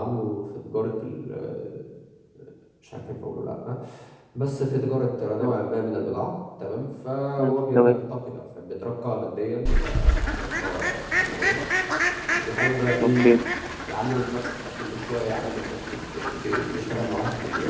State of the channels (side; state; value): both; identical; correlation 1.00